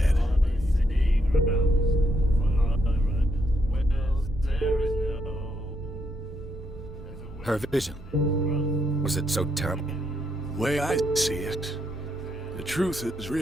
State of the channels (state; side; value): normal; both; correlation 0.78